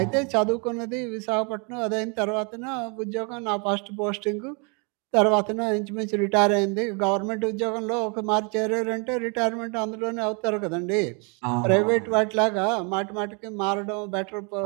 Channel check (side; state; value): left; quieter; 34.4 dB